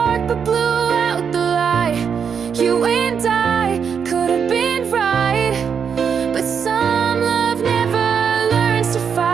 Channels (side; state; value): left; quieter; 6.9 dB